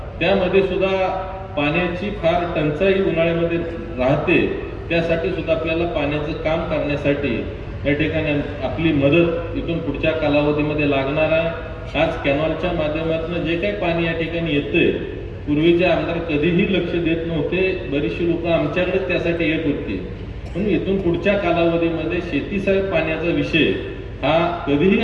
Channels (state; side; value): identical; both; correlation 1.00